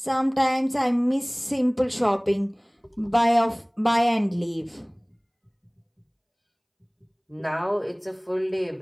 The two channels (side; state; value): both; identical; correlation 1.00